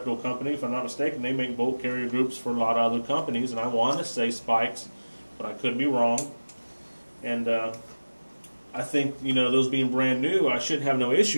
company. If I'm not mistaken, they make bolt carrier groups for a lot of other companies, and I want to say Spikes, but I could be wrong. And I think, you know, those being brand new, I should have no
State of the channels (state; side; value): inverted; both; correlation -1.00